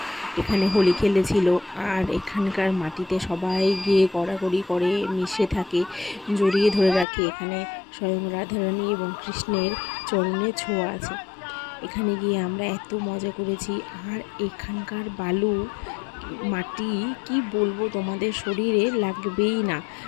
এখানে হোলি খেলেছিল, আর এখানকার মাটিতে সবাই গিয়ে গড়াগড়ি করে, মিশে থাকে, জড়িয়ে ধরে রাখে। এখানে স্বয়ং রাধারানী এবং কৃষ্ণের চরণে ছোঁয়া আছে। এখানে গিয়ে আমরা এত মজা করেছি। আর এখানকার বালু মাটি কি বলবো, তোমাদের শরীরে লাগবেই না।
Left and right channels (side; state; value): right; drops out; at 7.1 s